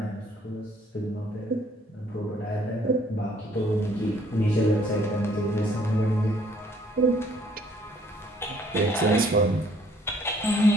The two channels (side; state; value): both; normal; correlation 0.61